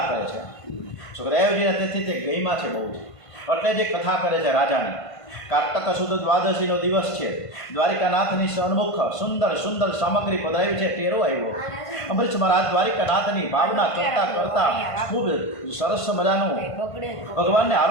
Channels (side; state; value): right; late; 1.5 ms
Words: કરે છે. સુખદેવજીને તેથી તે ગઈમાં છે બહુ જ, એટલે જે કથા કરે છે રાજાની. કાર્તક સુદ દ્વાદશીનો દિવસ છે. દ્વારિકાનાથની સન્મુખ સુંદર સુંદર સામગ્રી પધરાવી છે. ટેરો આવ્યો. અમરીશ મહારાજ દ્વારિકાનાથની ભાવના કરતાં કરતાં ખૂબ સરસ મજાનું ભગવાનને